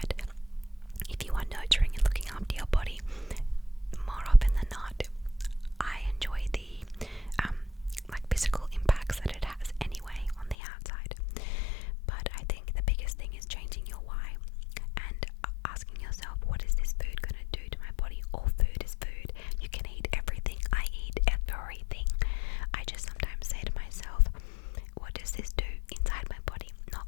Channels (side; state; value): right; drops out; at 10.6 s